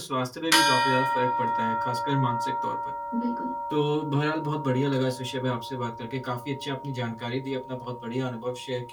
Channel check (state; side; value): identical; both; correlation 1.00